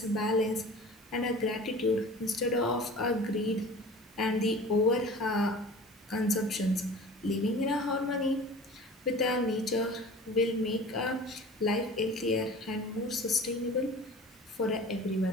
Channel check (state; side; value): normal; both; correlation 0.40